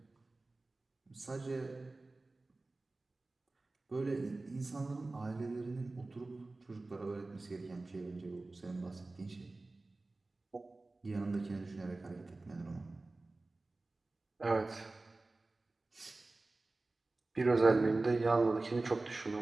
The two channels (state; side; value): quieter; left; 3.2 dB